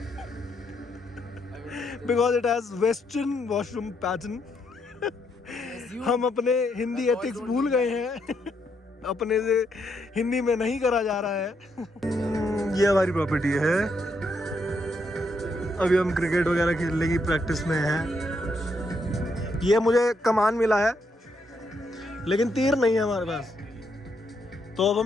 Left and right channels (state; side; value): normal; both; correlation 0.77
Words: Because it has Western washroom pattern. हम अपने Hindi ethics भूल गए हैं। अपने से हिंदी में नहीं करा जा रहा है। ये हमारी प्रॉपर्टी है। अभी हम क्रिकेट वगैरह खेलने की प्रैक्टिस में हैं। ये मुझे कमान मिला है लेकिन तीर नहीं है हमारे पास, तो अब